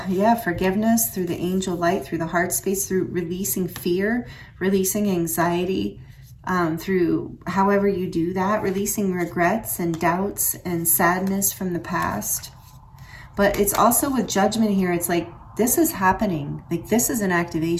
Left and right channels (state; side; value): identical; both; correlation 1.00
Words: forgiveness, through the angel light, through the heart space, through releasing fear, releasing anxiety, through however you do that, releasing regrets and doubts and sadness from the past. But it's also with judgment here, it's like, this is happening. Like, this is an